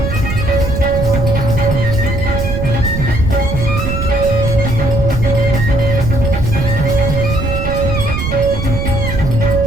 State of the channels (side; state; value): right; noise; rumble, 3 dB below the sound